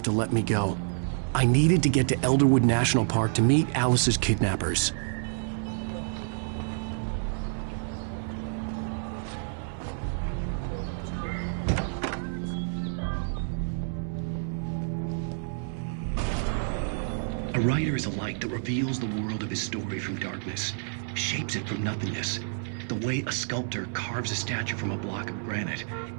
to let me go. I needed to get to Elderwood National Park to meet Alice's kidnappers. A writer is a light that reveals the world of his story from darkness, shapes it from nothingness. The way a sculptor carves a statue from a block of granite.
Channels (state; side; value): silent; left; 59 dB below the other